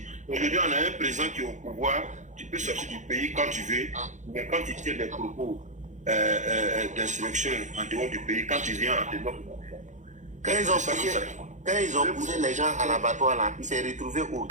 Aujourd'hui, on a un président qui est au pouvoir, tu peux sortir du pays quand tu veux, mais quand tu tiens des propos d'insurrection en dehors du pays, quand tu viens en dehors, Quand ils ont poussé les gens à l'abattoir là, il s'est retrouvé au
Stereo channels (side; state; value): left; late; 0.35 ms